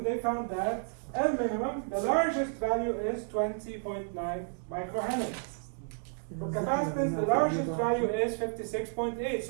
they found that L minimum, the largest value is 20.9 microhenry. For capacitance, the largest value is 56.8.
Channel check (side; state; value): left; silent; 57 dB below the other